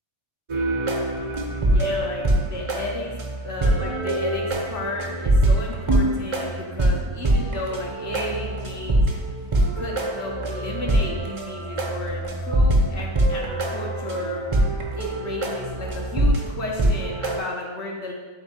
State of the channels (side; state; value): left; late; 1.4 ms